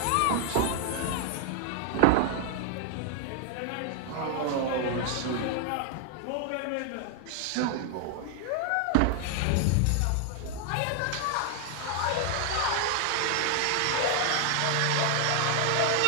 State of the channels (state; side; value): different; both; correlation 0.00